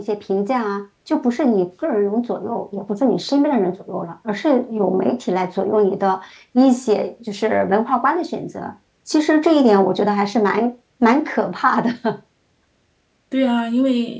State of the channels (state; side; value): identical; both; correlation 1.00